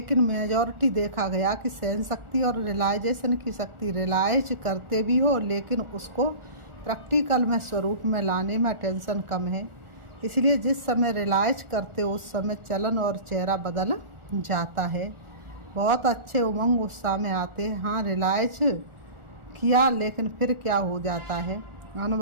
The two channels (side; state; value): left; late; 1.4 ms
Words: मेजॉरिटी देखा गया कि सहन शक्ति और रियलाइजेशन की शक्ति रियलाइज करते भी हो, लेकिन उसको प्रैक्टिकल में स्वरूप में लाने में टेंशन कम है। इसलिए जिस समय रियलाइज करते हो उस समय चलन और चेहरा बदल जाता है। बहुत अच्छे उमंग उत्साह में आते हैं। हाँ, रियलाइज किया, लेकिन फिर क्या हो जाता है?